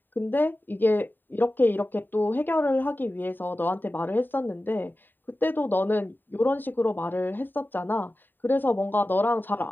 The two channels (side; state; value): right; late; 0.092 ms